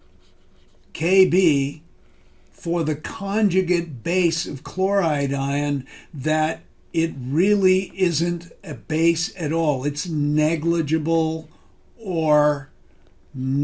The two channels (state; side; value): identical; both; correlation 1.00